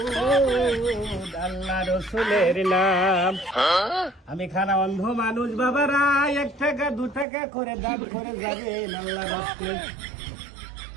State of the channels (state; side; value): drops out; left; at 7.2 s